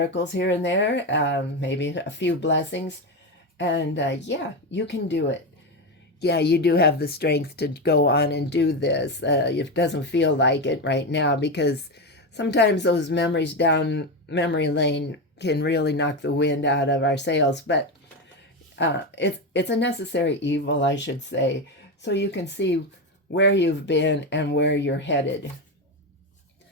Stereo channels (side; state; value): both; normal; correlation 0.14